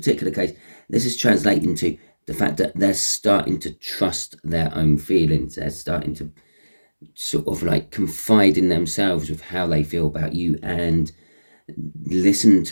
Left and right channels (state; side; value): inverted; both; correlation -1.00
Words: case, this is translating to the fact that they're starting to trust their own feelings. They're starting to sort of like confide in themselves with how they feel about you and listen